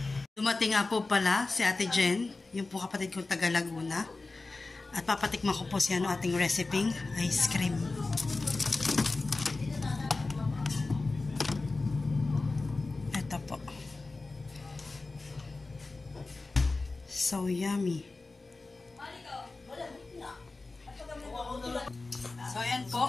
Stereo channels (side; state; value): right; quieter; 3.5 dB